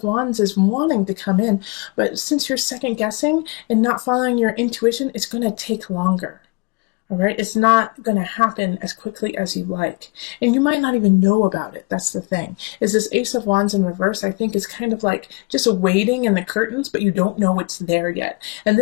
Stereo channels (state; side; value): quieter; right; 30.4 dB